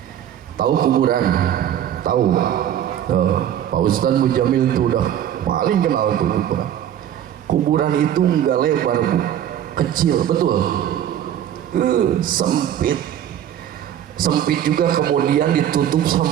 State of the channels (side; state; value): left; quieter; 10.6 dB